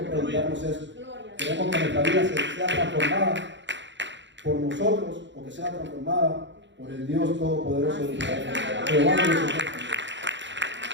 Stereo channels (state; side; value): late; left; 0.53 ms